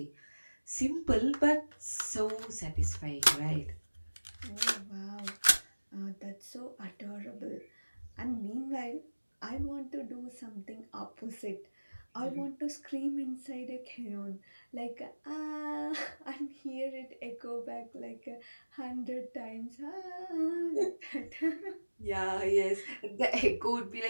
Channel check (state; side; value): inverted; both; correlation -1.00